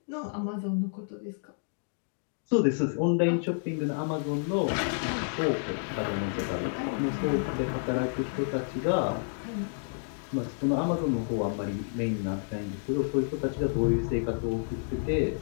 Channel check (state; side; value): silent; right; digital silence